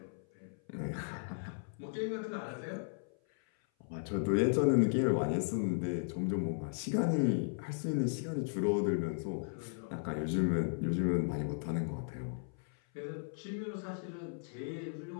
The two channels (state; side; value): silent; right; 54 dB below the other